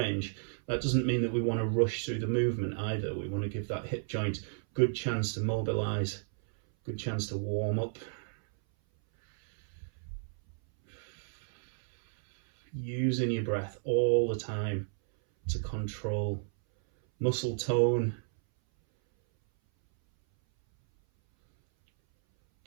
that doesn't mean that we want to rush through the movement either. We want to give that hip joint good chance to mobilize, good chance to warm up. Using your breath all the time to control muscle tone,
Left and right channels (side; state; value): left; silent; 56 dB below the other